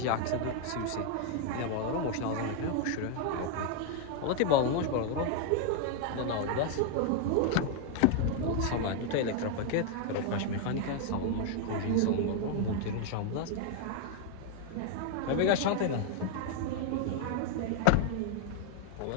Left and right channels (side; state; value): both; different; correlation 0.00